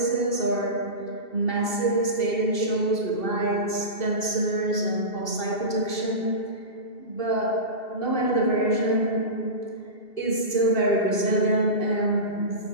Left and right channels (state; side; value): late; right; 2.7 ms